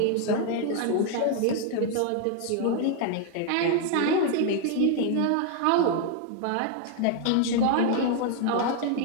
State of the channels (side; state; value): both; different; correlation 0.00